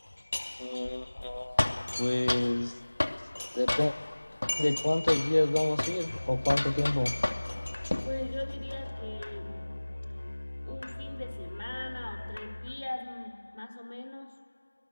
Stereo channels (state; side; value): inverted; both; correlation -1.00